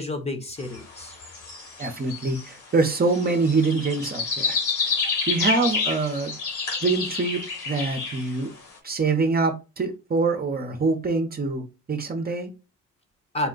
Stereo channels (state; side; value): normal; both; correlation 0.26